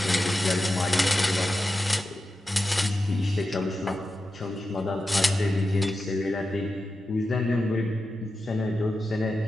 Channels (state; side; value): normal; both; correlation 0.91